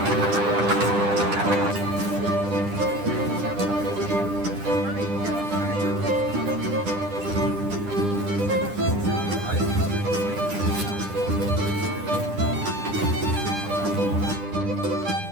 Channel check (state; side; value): late; left; 9.9 ms